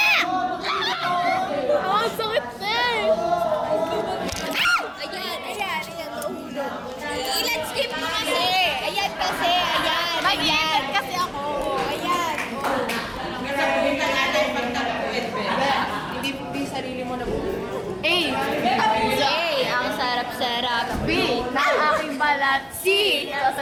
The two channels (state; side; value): identical; both; correlation 1.00